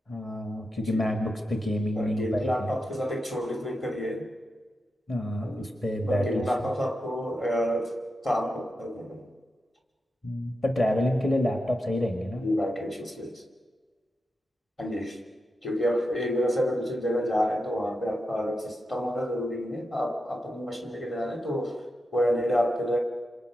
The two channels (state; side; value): normal; both; correlation 0.88